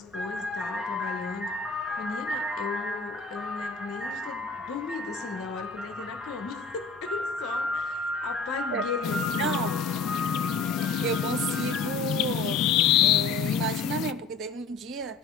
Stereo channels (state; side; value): quieter; right; 4.5 dB